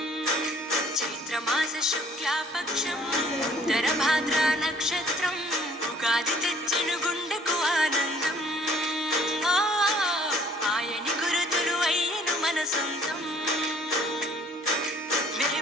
చైత్రమాస శుక్లాపక్షం ఉత్తర భాద్ర నక్షత్రం ఉగాది తెచ్చెను గుండెకు ఆనందం ఆయని గురుతులు అయ్యను మన సొంతం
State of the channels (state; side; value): normal; both; correlation 0.57